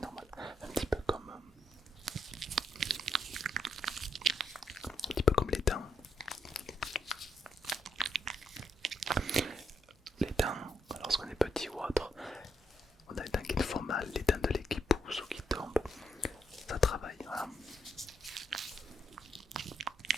Un petit peu comme les dents. Les dents, lorsqu'on est petit ou autre, on a les dents qui nous font mal, les dents de lait qui poussent ou qui tombent, ça travaille, voilà.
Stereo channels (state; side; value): normal; both; correlation 0.79